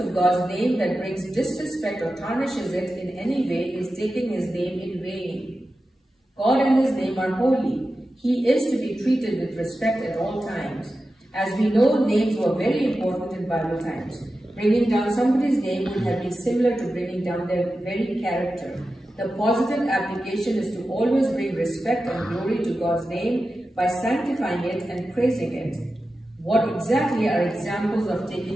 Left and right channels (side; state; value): both; normal; correlation 0.93